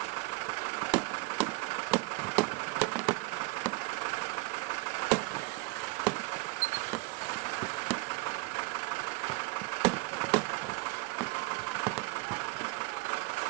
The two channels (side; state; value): left; quieter; 23.9 dB